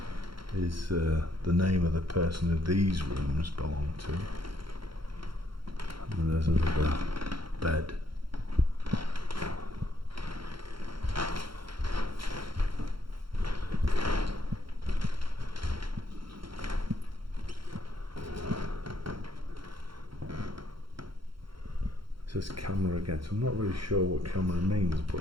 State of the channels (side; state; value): left; late; 0.73 ms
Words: is the name of the person who these rooms belong to. And there's another bed. It says camera again, so I'm not really sure what camera means,